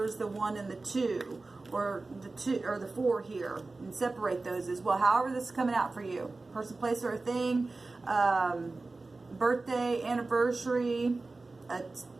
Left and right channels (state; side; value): quieter; left; 3.5 dB